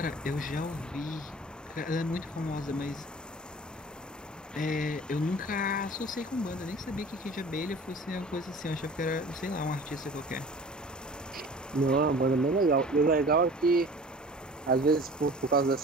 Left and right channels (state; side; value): normal; both; correlation 0.44